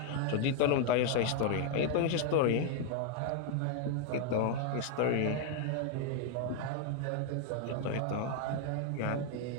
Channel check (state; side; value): different; both; correlation 0.00